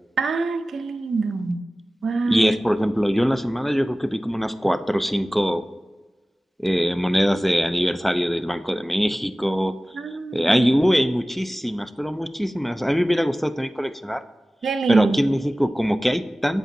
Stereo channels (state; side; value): normal; both; correlation 0.97